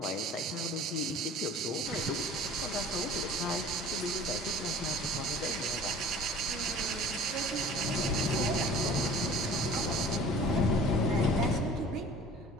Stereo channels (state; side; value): normal; both; correlation 0.45